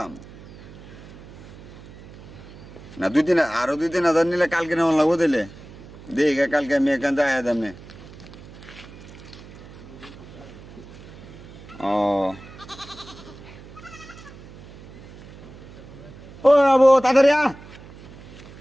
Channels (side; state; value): right; noise; hum, 18 dB below the sound